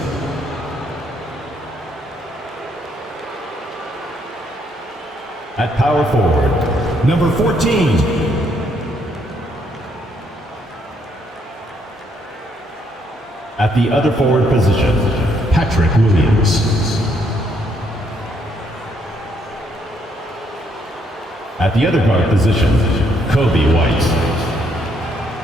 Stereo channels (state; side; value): normal; both; correlation 0.72